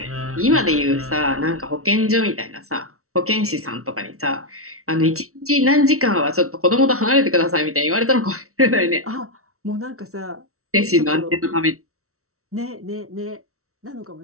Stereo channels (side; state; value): left; late; 0.63 ms